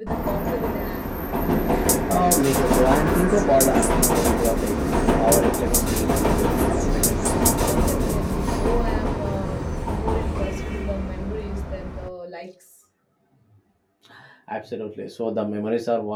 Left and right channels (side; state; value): both; identical; correlation 1.00